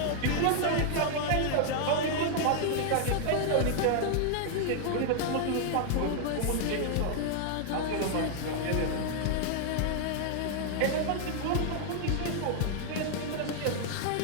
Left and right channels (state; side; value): different; both; correlation 0.00